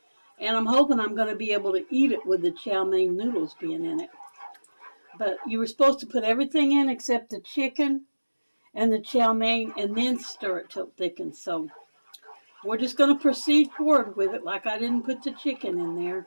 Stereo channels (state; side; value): inverted; both; correlation -1.00